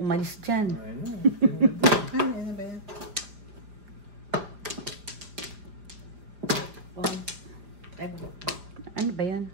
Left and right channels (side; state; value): left; late; 5.0 ms